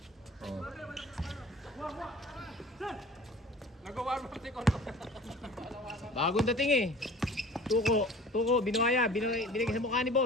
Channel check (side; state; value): both; normal; correlation 0.44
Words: Oh. Bagong dating eh. Tuko, binuhaya. Binigay sa mukha ni